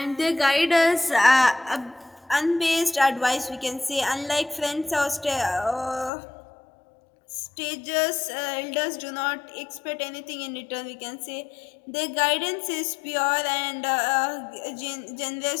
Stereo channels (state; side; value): drops out; right; at 6.1 s